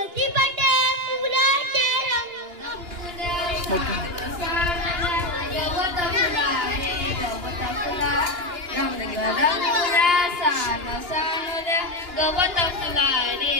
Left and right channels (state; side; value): late; left; 2.9 ms